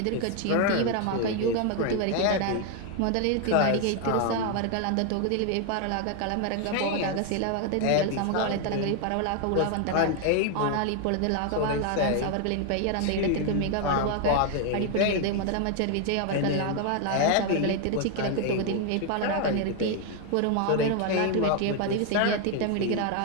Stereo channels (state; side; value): different; both; correlation 0.01